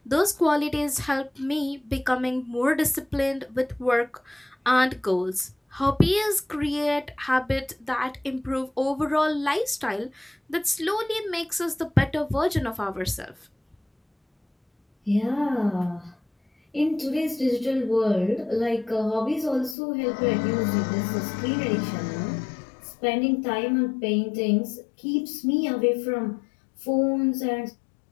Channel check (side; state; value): right; drops out; at 19.8 s